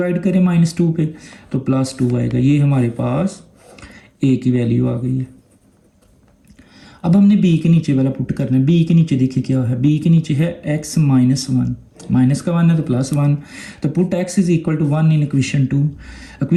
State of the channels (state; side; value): identical; both; correlation 1.00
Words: करें -2 पे तो +2 आएगा। ये हमारे पास a की वैल्यू आ गई है। अब हमने b के नीचे वाला पुट करना है। b के नीचे देखिए क्या है, b के नीचे है x - 1, माइनस का 1 है तो +1, तो put x is equal to 1 in equation 2।